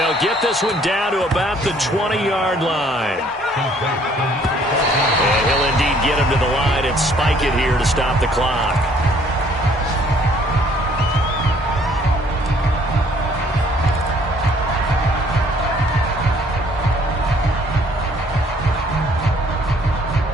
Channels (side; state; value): both; normal; correlation 0.60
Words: get this one down to about the 20-yard line. And he'll indeed get him to the line and spike it here to stop the clock.